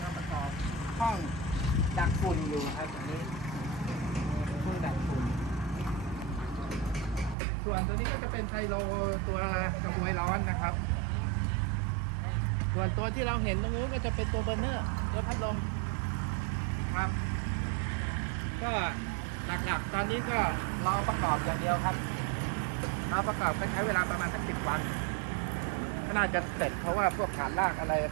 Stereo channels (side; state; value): left; drops out; at 7.4 s